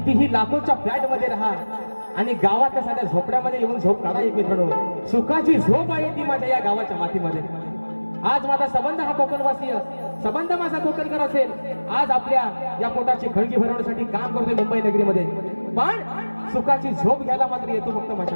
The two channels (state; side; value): inverted; both; correlation -1.00